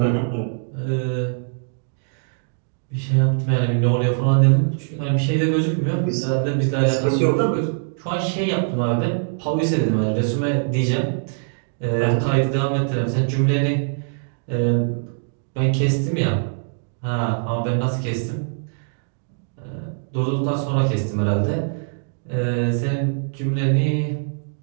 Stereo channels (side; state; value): left; silent; digital silence